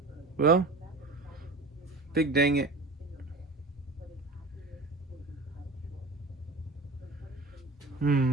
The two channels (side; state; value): left; quieter; 3.1 dB